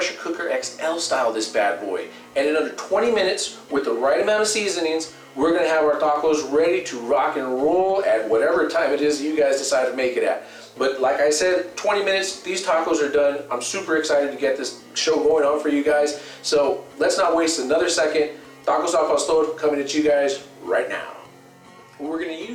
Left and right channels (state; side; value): identical; both; correlation 1.00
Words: cooker XL style this bad boy. And in under 20 minutes, with the right amount of seasonings, we're going to have our tacos ready to rock and roll at whatever time it is you guys decide to make it at. But like I said, 20 minutes, these tacos are done. I'm super excited to get this show going on for you guys. So let's not waste another second. Tacos al pastor coming at you guys right now. What we're going to